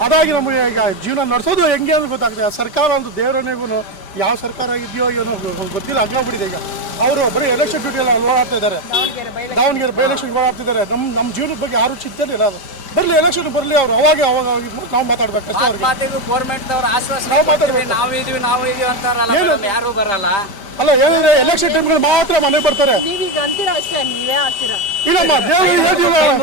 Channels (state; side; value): late; right; 5.1 ms